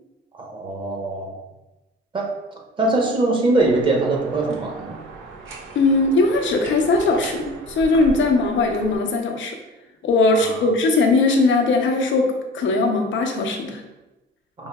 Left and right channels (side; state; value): both; normal; correlation 0.40